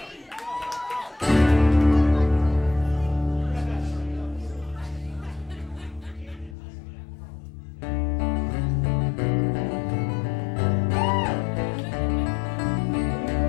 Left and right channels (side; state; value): right; drops out; at 6.6 s